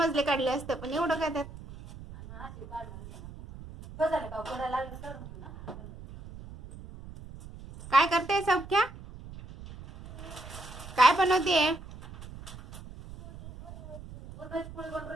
काढले असते पण एवढं काय त्यात. आणि अशी काढणार होती मला. बस झालं का पोराला लागलं करून घेऊ ना. काय करते सौख्या? काय बनवतेय? पोळी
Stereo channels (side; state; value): right; noise; rumble, 15 dB below the sound